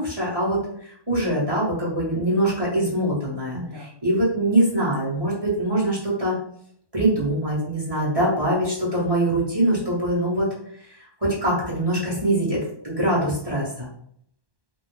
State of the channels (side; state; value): left; late; 1.1 ms